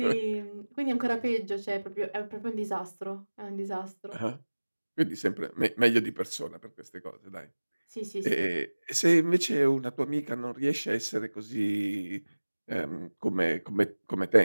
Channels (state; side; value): inverted; both; correlation -1.00